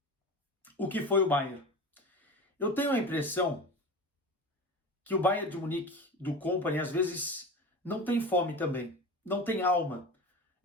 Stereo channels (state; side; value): normal; both; correlation 0.31